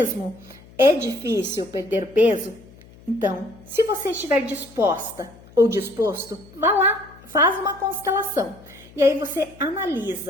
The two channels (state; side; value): noise; left; hum, 23 dB below the sound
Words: é difícil perder peso. Então, se você estiver disposta ou disposto, vá lá, faz uma constelação. E aí você